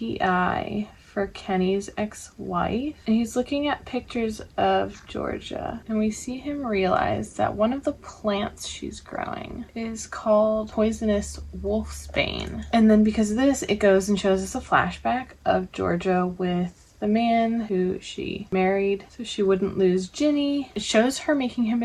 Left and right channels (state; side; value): identical; both; correlation 1.00